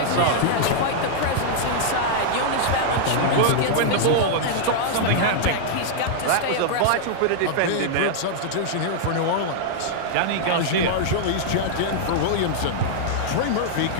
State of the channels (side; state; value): both; different; correlation -0.01